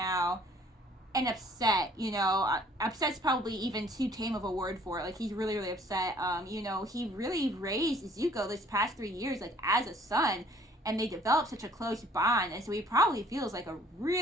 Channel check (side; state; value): both; normal; correlation 0.57